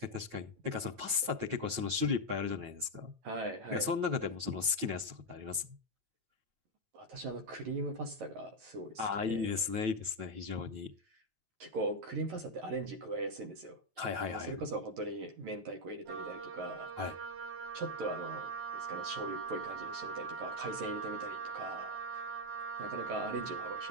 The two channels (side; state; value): left; late; 9.2 ms